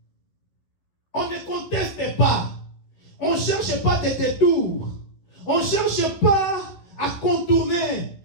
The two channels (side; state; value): right; late; 11 ms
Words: On ne conteste pas. On ne cherche pas des détours. On ne cherche pas à contourner.